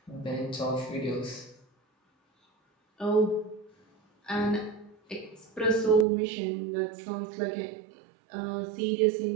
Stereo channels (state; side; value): drops out; left; at 6.1 s